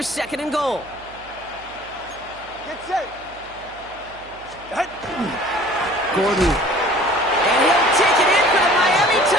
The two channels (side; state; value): right; noise; hum, 23 dB below the sound